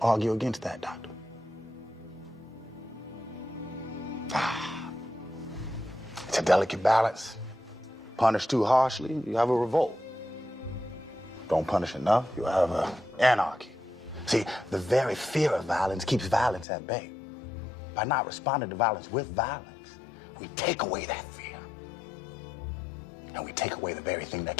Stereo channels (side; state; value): right; drops out; at 16.7 s